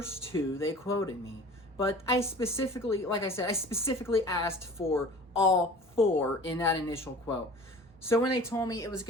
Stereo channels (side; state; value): both; normal; correlation 0.43